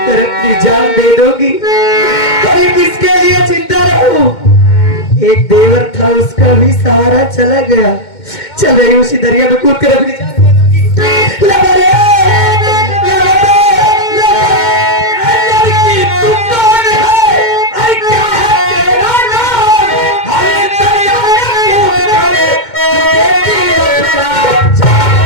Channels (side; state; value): right; late; 2.1 ms